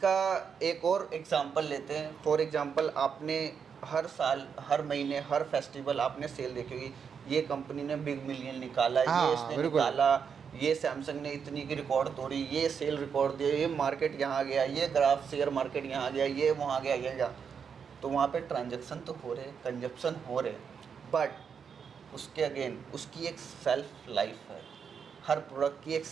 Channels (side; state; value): left; quieter; 6.7 dB